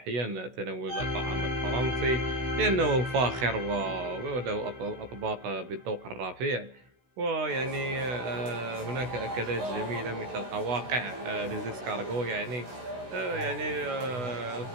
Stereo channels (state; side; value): late; left; 16 ms